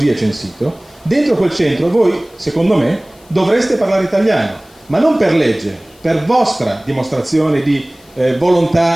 è censito. Dentro quel centro voi, secondo me, dovreste parlare italiano, ma non per legge, per vostra dimostrazione di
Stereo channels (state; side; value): noise; left; hiss, 29 dB below the sound